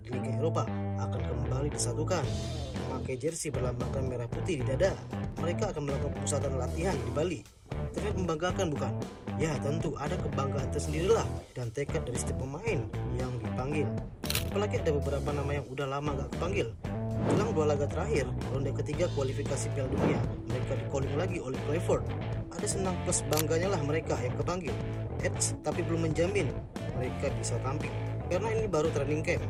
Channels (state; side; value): identical; both; correlation 1.00